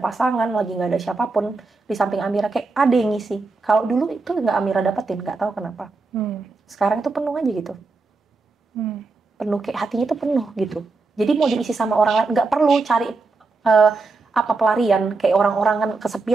pasangan, lagi nggak ada siapapun di samping Amira, kayak ada yang ngisi. Kalau dulu itu nggak Amira dapetin, nggak tahu kenapa. Sekarang itu penuh aja gitu. Penuh, kayak hatinya tuh penuh gitu. Jadi mau diisi sama orang lain, nggak perlu cari apa pelarian, kayak orang-orang kan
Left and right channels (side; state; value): left; quieter; 3.9 dB